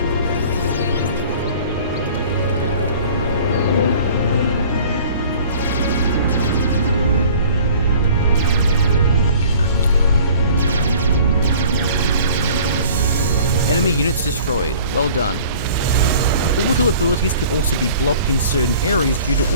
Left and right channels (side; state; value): both; inverted; correlation -0.48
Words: Enemy units destroyed. Well done. Orbital abilities can also be blocked in certain areas due to